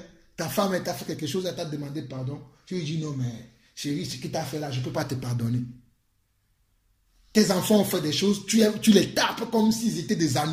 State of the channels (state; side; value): identical; both; correlation 1.00